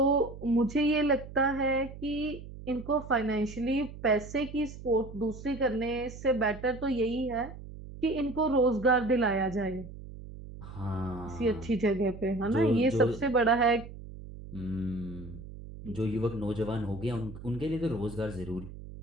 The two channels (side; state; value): right; noise; hum, 13 dB below the sound